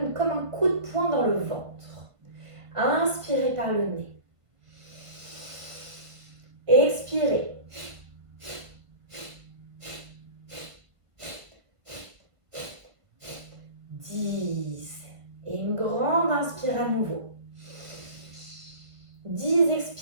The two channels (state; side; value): late; left; 1.5 ms